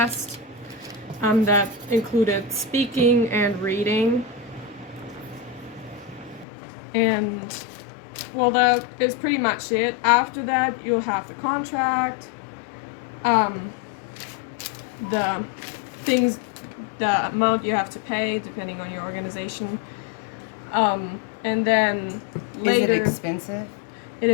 that included speaking and reading. And, well, that is pretty much it. After that, you'll have the contract, the things, the amount you have to pay, depending on your organization. And then later... Is it expensive? It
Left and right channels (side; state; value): right; drops out; at 6.5 s